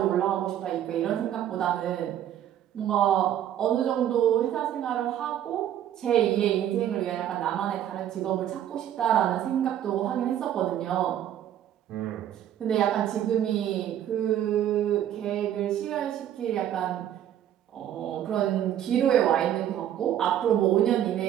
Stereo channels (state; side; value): quieter; left; 11.0 dB